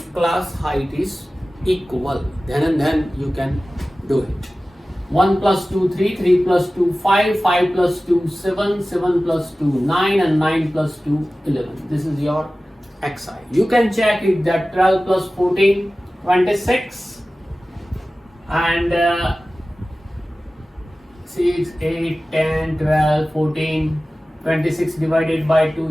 class height is equal, then you can do it. 1 plus 2, 3, 3 plus 2, 5, 5 plus 2, 7, 7 plus 2, 9 and 9 plus 2, 11. This is your xi. You can check it that 12 plus 14, 26 and 6, 8, 10, 12, 14, 26 divided by 2,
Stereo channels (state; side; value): normal; both; correlation 0.96